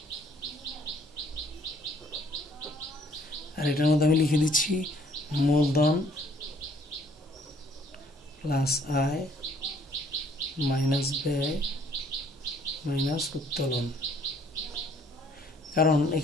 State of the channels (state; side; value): normal; both; correlation 0.61